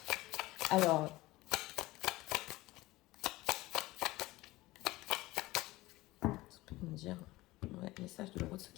Alors, ça peut me dire, ouais, message de l'euro de ce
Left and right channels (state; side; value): quieter; right; 19.1 dB